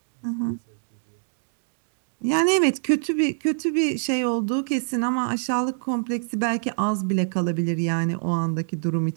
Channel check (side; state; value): left; silent; digital silence